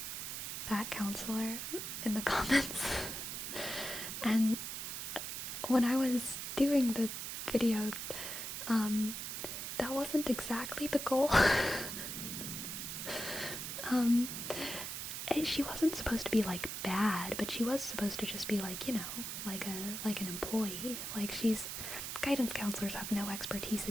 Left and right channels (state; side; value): noise; right; hiss, 5 dB below the sound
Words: that counselor in the comments. And when I was doing the video, that wasn't exactly the goal. She wasn't supposed to be like bad, but she was supposed to just be like, like an employee. Like, guidance counselors have no expertise